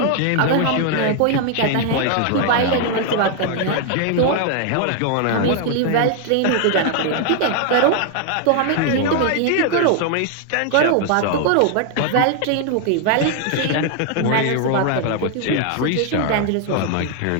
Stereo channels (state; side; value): different; both; correlation 0.00